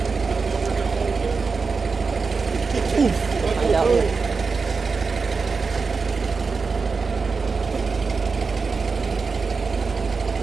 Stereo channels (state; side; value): quieter; left; 4.7 dB